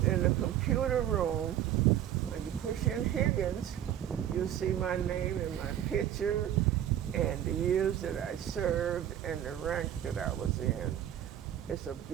the computer room and you push in Higgins, you'll see my name and my picture and the years that I served and the rank that I was in. It's a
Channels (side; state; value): left; quieter; 11.0 dB